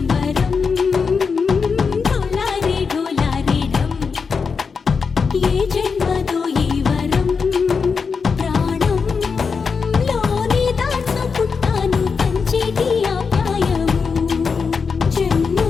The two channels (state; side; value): quieter; right; 5.4 dB